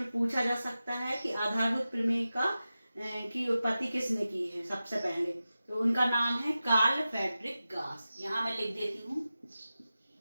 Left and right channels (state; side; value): inverted; both; correlation -0.94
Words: में पूछा जा सकता है कि आधारभूत प्रमेय की उत्पत्ति किसने की है। सबसे पहले तो उनका नाम है कार्ल फ्रेडरिक गास। यहाँ मैं लिख देती हूँ,